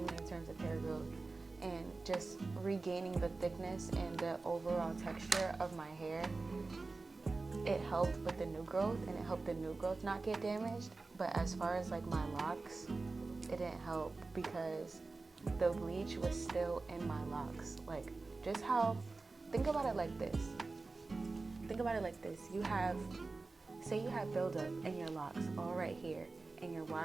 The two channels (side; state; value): left; quieter; 3.7 dB